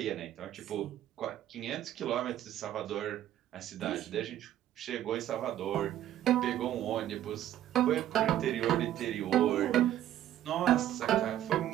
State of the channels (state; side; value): quieter; left; 12.2 dB